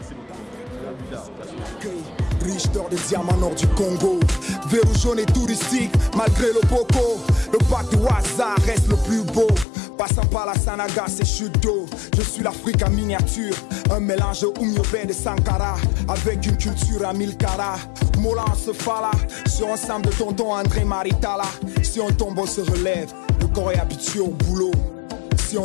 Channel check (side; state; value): right; drops out; at 9.7 s